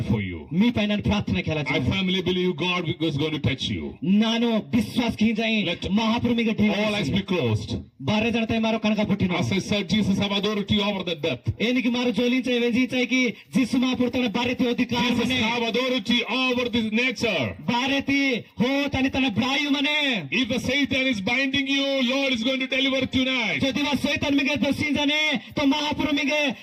for you. మీ పైన ప్రార్థన Kela I firmly believe God is going to touch you. ನಾನು ವಿಶ್ವಾಸ ಕಿ ಜಾಯಿ Let ಮಹಾಪ್ರಭುಗೆ all eyes be closed. ಬಾರೆ ಜನತೆ ಮಾರೋ ಕನಕ ಪುಟ್ಟಿನ As I said, Jesus have authority over the death. ಏನಿಗೆ ಮಾರು ಜೋಲಿಂಚೆ ವೆಂಜಿಚೈ ಕಿ ಜಿಸು ಮಹಾಪ್ರಭು ತನ ಬಾರೆತಿ ಅಧಿಕಾರ Jesus ಮನೆ have authority over this nature. ಬಾರೆತಿ ಹೋ ತನಿ ತನ ಬ್ರಾಯು ಮನೆ If the Satan is binding you, Lord is going to deliver tonight. যদি वा शैतान मिगे दसिंजने तो महाप्रभु मिगे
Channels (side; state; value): both; identical; correlation 1.00